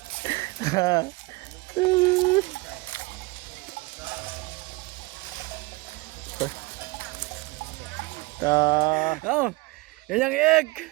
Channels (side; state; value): left; quieter; 23.9 dB